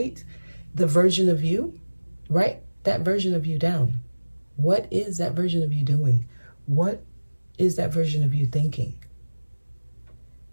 the version of you. Write that version of you down. What is that version of you doing? What is that version of you thinking?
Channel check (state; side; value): inverted; both; correlation -1.00